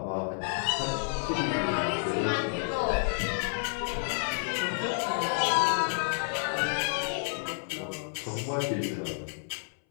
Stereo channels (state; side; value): silent; right; 58 dB below the other